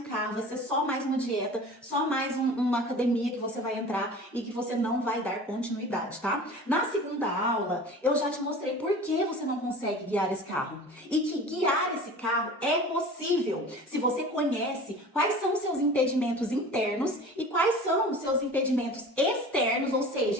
carro, vai ser só mais uma dieta, só mais uma academia que você vai entrar e que você não vai dar continuidade, tá? Na segunda aula, eu já te mostrei por que você não consegue guiar esse carro. E que guiar esse carro é possível se você conhece quais são os seus impedimentos internos e quais são os seus impedimentos externos, ou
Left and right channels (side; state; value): both; normal; correlation 0.39